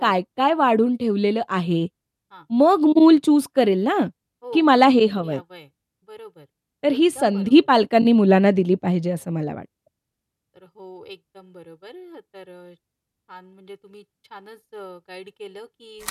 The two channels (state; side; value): identical; both; correlation 1.00